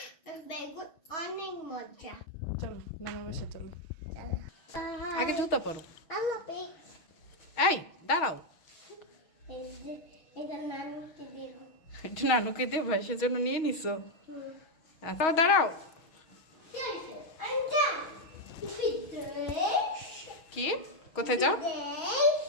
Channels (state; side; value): late; right; 6.3 ms